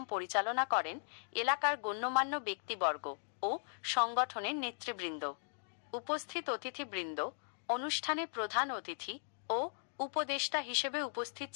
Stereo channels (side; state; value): right; silent; digital silence